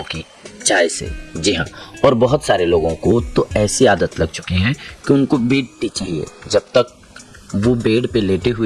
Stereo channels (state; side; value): identical; both; correlation 1.00